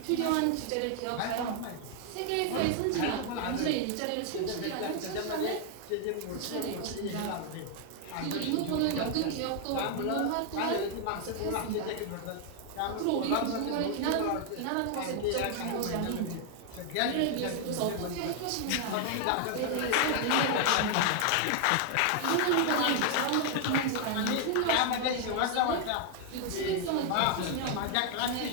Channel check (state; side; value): different; both; correlation 0.00